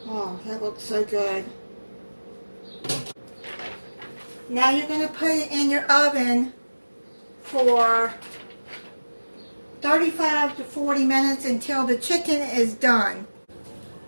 Oh, that looks so good. Now you're going to put it in your oven for 35 to 40 minutes until the chicken is done.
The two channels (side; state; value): both; inverted; correlation -1.00